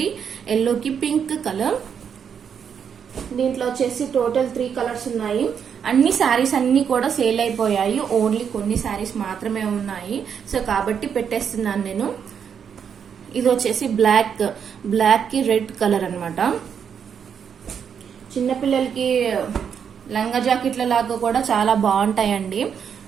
ఎల్లోకి పింక్ కలర్. దీంట్లో వచ్చేసి టోటల్ 3 కలర్స్ ఉన్నాయి. అన్ని శారీస్ అన్ని కూడా సేల్ అయిపోయాయి. ఓన్లీ కొన్ని శారీస్ మాత్రమే ఉన్నాయి. సో కాబట్టి పెట్టేస్తున్నాను నేను. ఇది వచ్చేసి బ్లాక్ కి రెడ్ కలర్ అనమాట. చిన్నపిల్లలకి లంగా జాకెట్ల లాగా కూడా చాలా బాగుంటాయండి.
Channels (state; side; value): quieter; left; 7.5 dB